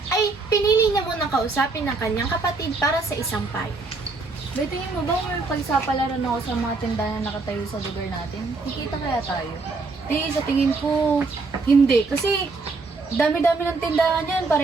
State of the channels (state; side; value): quieter; left; 3.8 dB